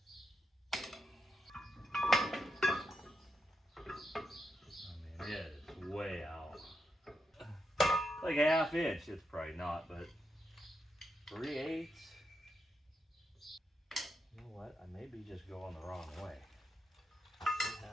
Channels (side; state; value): both; normal; correlation 0.84